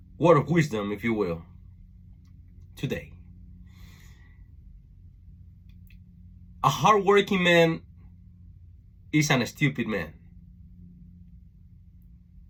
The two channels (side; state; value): both; identical; correlation 1.00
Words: word of wisdom, if you will, today. A hardworking man isn't a stupid man.